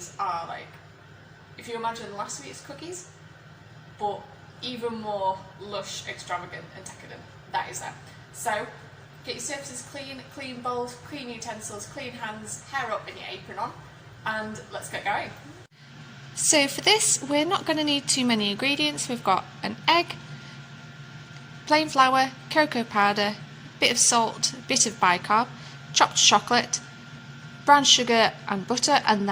are like, if you imagine last week's cookies, but even more lush, extravagant and decadent. That is them. So get your surfaces clean, clean bowls, clean utensils, clean hands, hair up and your apron on, and let's get going. So for this, we're not going to need too many ingredients. We've got an egg, plain flour, cocoa powder, bit of salt, a bit of bicarb, chopped chocolate, brown sugar and butter, and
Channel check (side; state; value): both; identical; correlation 1.00